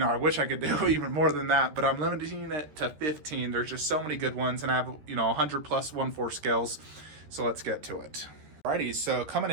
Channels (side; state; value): left; late; 13 ms